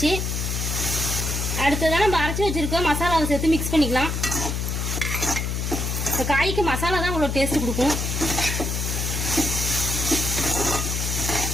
அடுத்ததான் நம்ம அரைச்சி வச்சிருக்கோம் மசாலாவை சேர்த்து மிக்ஸ் பண்ணிக்கலாம். இந்த காய்க்கு மசாலா தான் உங்களுக்கு டேஸ்ட் கொடுக்கும்.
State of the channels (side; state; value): left; noise; hum, 1 dB below the sound